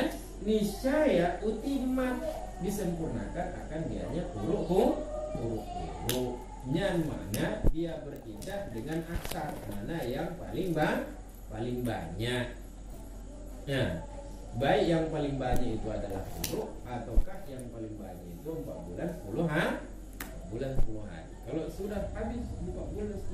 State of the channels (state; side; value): identical; both; correlation 1.00